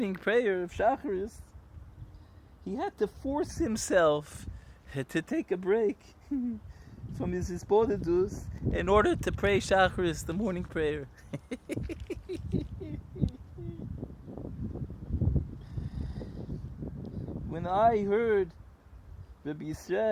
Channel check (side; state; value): both; identical; correlation 1.00